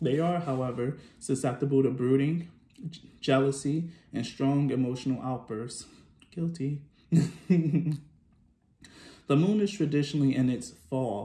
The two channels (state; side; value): identical; both; correlation 1.00